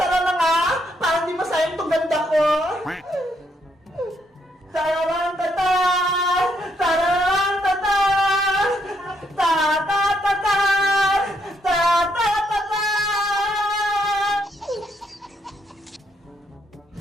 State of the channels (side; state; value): both; normal; correlation 0.74